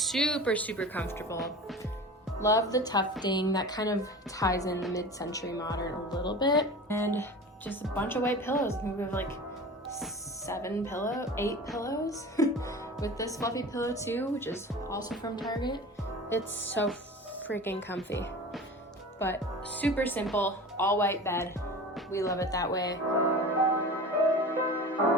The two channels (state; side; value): normal; both; correlation 0.35